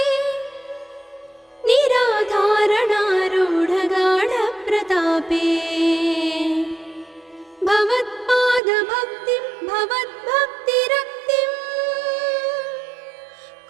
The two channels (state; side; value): drops out; left; at 8.6 s